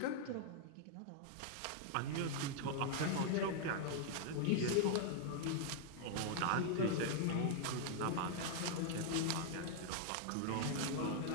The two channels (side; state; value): both; different; correlation -0.01